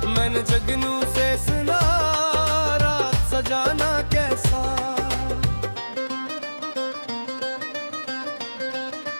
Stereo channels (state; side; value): inverted; both; correlation -1.00